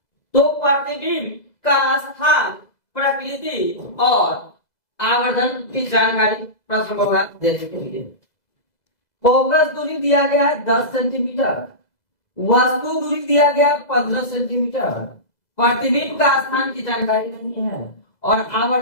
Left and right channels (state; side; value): late; right; 2.0 ms